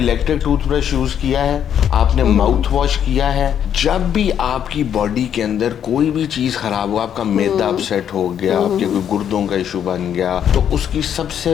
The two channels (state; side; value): quieter; right; 9.1 dB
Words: टूथब्रश यूज किया है, आपने माउथ वॉश किया है। जब भी आपकी बॉडी के अंदर कोई भी चीज खराब हो, आपका मैदा अपसेट हो गया, आपके कोई गुर्दों का इशू बन गया, तो उसकी सबसे